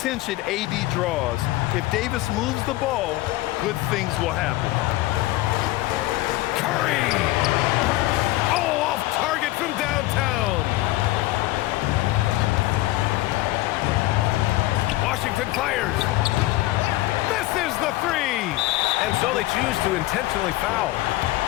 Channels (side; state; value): right; quieter; 17.8 dB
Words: AD draws, if Davis moves the ball, good things will happen. Curry! Oh, off target from downtown. Washington fires. Misses the three. And so they choose to intentionally foul.